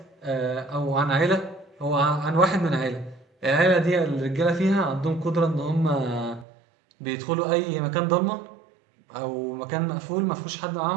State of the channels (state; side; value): drops out; left; at 6.5 s